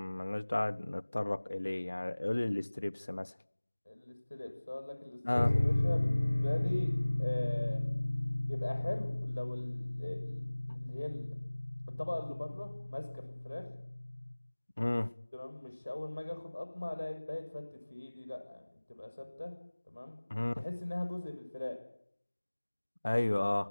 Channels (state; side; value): inverted; both; correlation -1.00